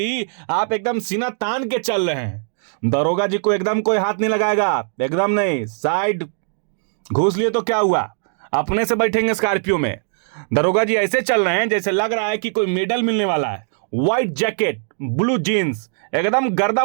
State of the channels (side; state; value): left; silent; digital silence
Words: आप एकदम सीना तान के चल रहे हैं। दरोगा जी को एकदम कोई हाथ नहीं लगाएगा, एकदम नहीं। साइड घूस लिए तो क्या हुआ, अपने से बैठेंगे स्कॉर्पियो में। दरोगा जी ऐसे चल रहे हैं जैसे लग रहा है कि कोई मेडल मिलने वाला है। व्हाइट जैकेट, ब्लू जीन्स, एकदम गर्दा